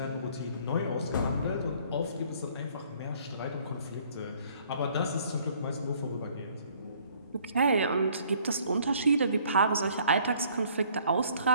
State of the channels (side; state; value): both; inverted; correlation -0.59